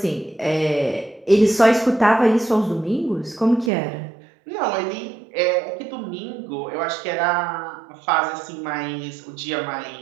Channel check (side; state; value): left; drops out; at 3.7 s